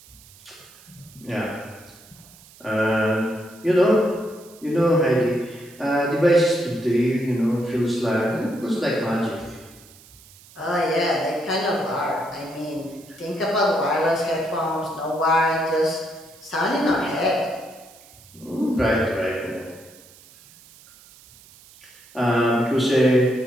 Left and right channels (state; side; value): noise; right; hiss, 24 dB below the sound